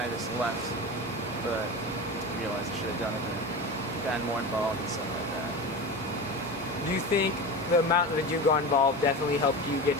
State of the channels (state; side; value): normal; both; correlation 0.26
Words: of just left, but I realized I should have done it and gotten more involved and stuff like that. Do you think the amount that you got involved definitely helped you get